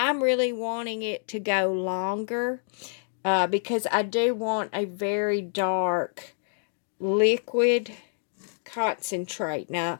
really wanting it to go longer because I do want a very dark liquid concentrate. Now,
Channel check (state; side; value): silent; right; digital silence